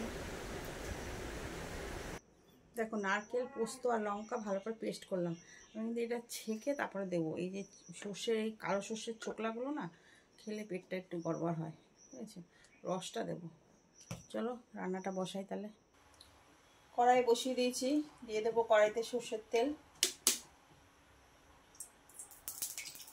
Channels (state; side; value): identical; both; correlation 1.00